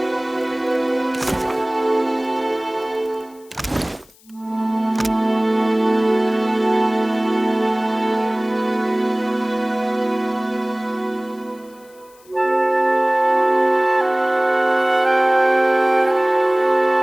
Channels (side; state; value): left; noise; hiss, 28 dB below the sound